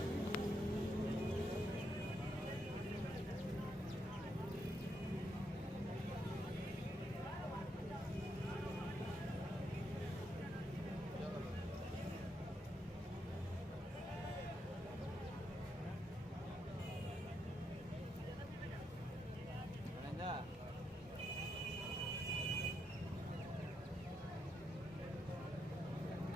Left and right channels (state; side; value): normal; both; correlation 0.80